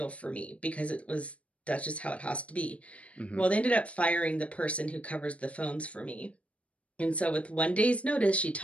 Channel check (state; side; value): late; right; 0.064 ms